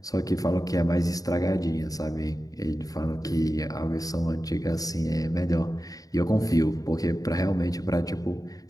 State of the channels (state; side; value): late; right; 0.18 ms